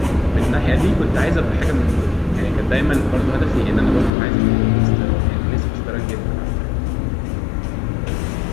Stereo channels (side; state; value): right; drops out; at 4.1 s